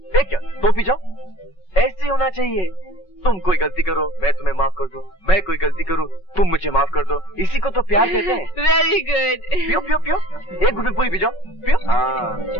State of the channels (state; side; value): late; right; 5.4 ms